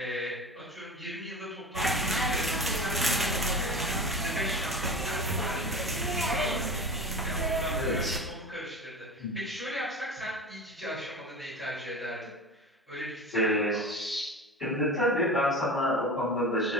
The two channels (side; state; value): both; normal; correlation 0.32